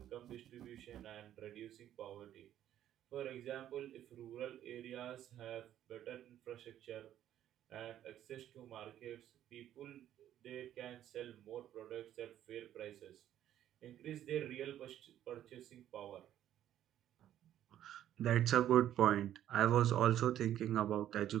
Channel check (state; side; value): quieter; left; 11.6 dB